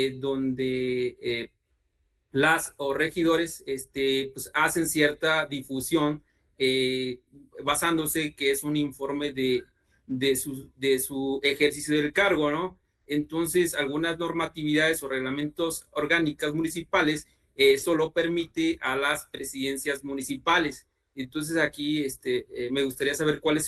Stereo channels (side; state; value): both; identical; correlation 1.00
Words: donde las o regidores pues hacen cierta difusión basándose que es un informe de su ejercicio del cargo, ¿no? Entonces, algunas normatividades o reglamentos orgánicas municipales solo permite a las presidencias municipales. Entonces, aquí me gustaría saber cuál es